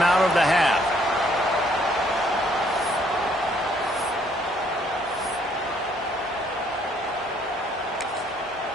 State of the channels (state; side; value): normal; both; correlation 0.66